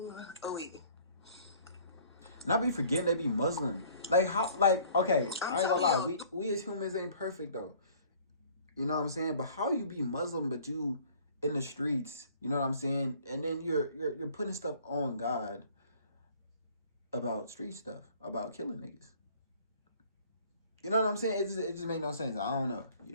oh wait. And I be forgetting they be Muslim. Like how? Like okay, I ain't gonna lie. We as humans ain't perfect though. You know what I'm saying? But how you be Muslim but you in the streets? You know what I'm saying? And then you're putting stuff on God about street stuff, about killing niggas. You know what I'm saying? It just make no sense. I don't know. You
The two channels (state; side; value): inverted; both; correlation -0.54